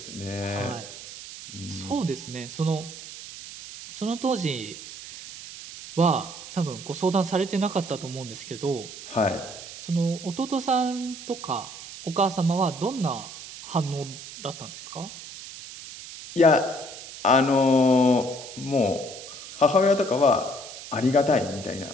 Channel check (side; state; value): right; noise; hiss, 13 dB below the sound